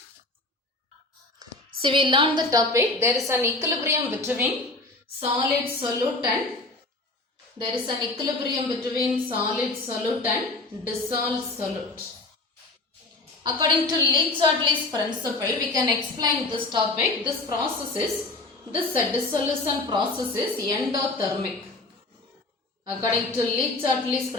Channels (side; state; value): right; quieter; 3.1 dB